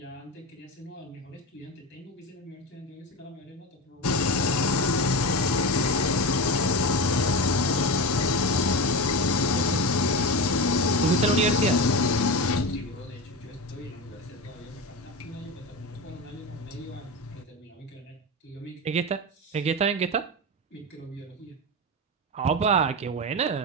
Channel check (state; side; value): normal; both; correlation 0.21